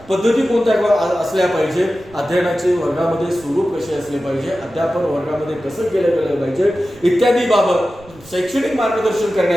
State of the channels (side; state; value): right; noise; rumble, 24 dB below the sound